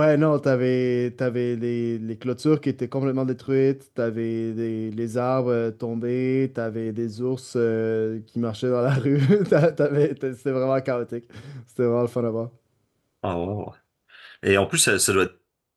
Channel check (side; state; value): both; identical; correlation 1.00